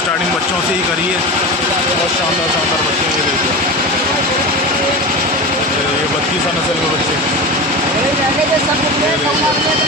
बच्चों से ही करी है। बहुत शानदार शानदार बच्चे हैं। ये देखिए 32 नस्ल के बच्चे।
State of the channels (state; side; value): normal; both; correlation 0.26